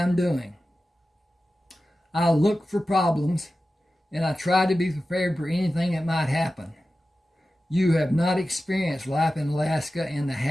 doing. I look for problems, and I try to be prepared for anything that might happen. You have not experienced life in Alaska and the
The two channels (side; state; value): both; normal; correlation 0.94